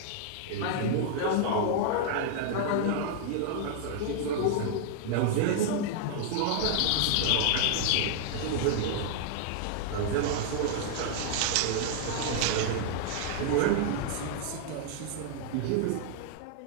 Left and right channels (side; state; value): both; different; correlation -0.01